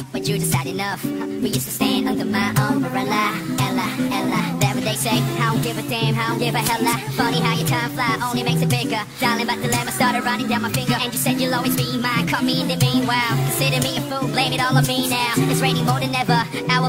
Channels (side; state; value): both; identical; correlation 1.00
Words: but you just had enough. We used to stand under my umbrella, Ella. That what they say, I don't give a damn, I don't give a hella. Funny how your time fly only makes it bigger. Darling, but the lemon started running down my finger. And you said you'll always be mine, cut me in the meanwhile. Consider me a fool, blame it all on me now. It's raining more than ever,